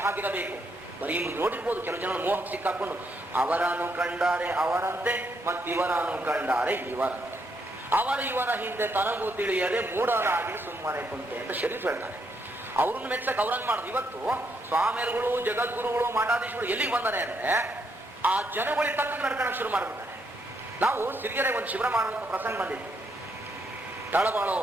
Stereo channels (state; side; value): normal; both; correlation 0.76